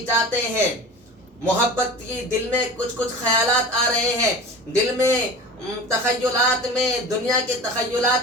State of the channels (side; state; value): both; normal; correlation 0.36